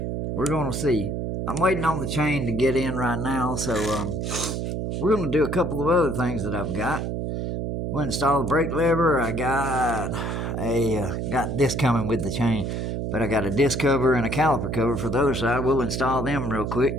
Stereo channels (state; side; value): noise; right; hum, 2 dB below the sound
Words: going to see. I'm waiting on the chain to get in right now, so we're going to do a couple of other things that I've got. We'll install the brake lever. I got this coming with the chain, but I got a disc cover and a caliper cover for the other side. We'll install them real quick